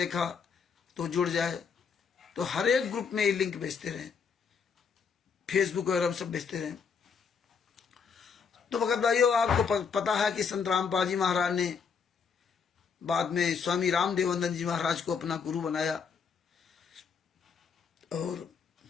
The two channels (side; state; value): right; quieter; 6.1 dB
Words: तो जुड़ जाए। तो हर एक ग्रुप में ये लिंक भेजते रहें, फेसबुक वगैरह सब भेजते रहें। तो भगत भाइयों, आपको पता है कि संत रामपाल जी महाराज ने बाद में स्वामी रामदेवानंद जी महाराज को अपना गुरु बनाया। और